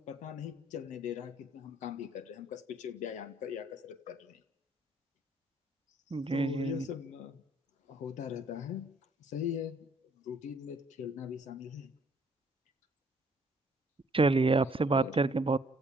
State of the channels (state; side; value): normal; both; correlation 0.62